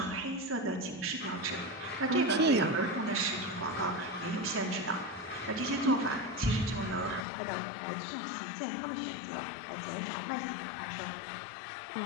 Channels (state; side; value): drops out; right; at 7.2 s